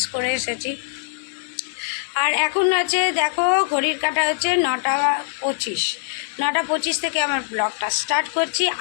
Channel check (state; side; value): silent; right; 64 dB below the other